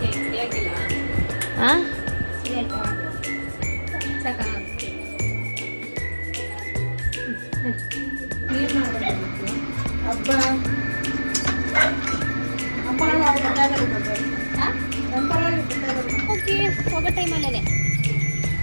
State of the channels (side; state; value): both; inverted; correlation -1.00